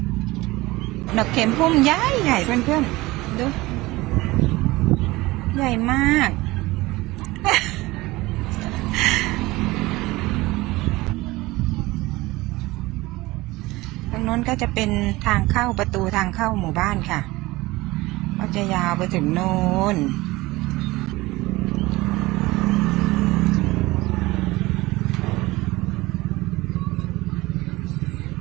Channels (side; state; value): left; quieter; 20.1 dB